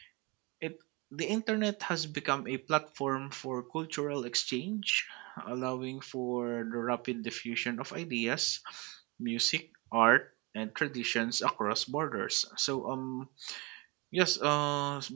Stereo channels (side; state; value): left; quieter; 27.1 dB